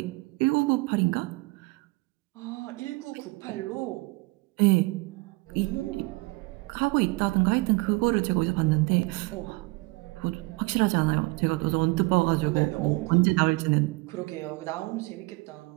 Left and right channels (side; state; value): left; quieter; 24.8 dB